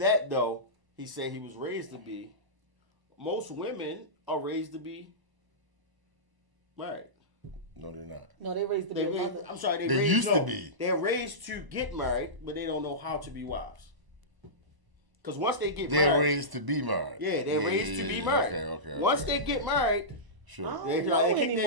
though, he said he was raised to be. Most women are raised to be married. No, they're not. No, they raised to be a mother. I'm sorry, They used to be. They're raised to get married, but they don't know how to be wives. Because once they get They're married, raised to be married. yeah, they're raised to be married. Okay. Once they get married, Sure. they kick their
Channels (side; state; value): left; late; 1.0 ms